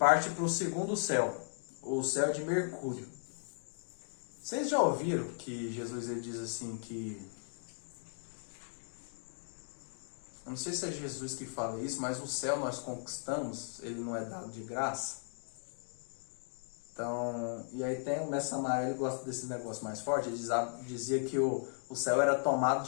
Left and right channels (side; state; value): right; silent; digital silence